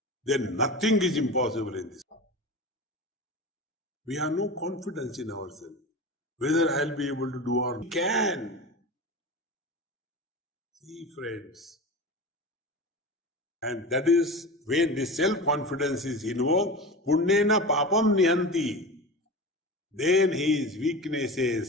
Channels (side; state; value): both; normal; correlation 0.29